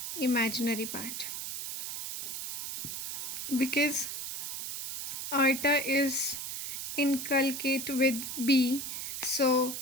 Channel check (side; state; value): right; noise; hiss, 5 dB below the sound